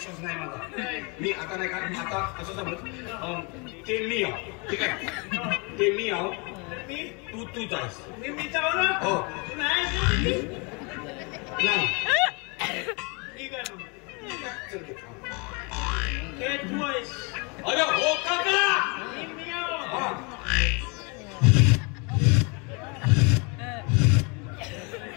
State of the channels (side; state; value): right; quieter; 31.5 dB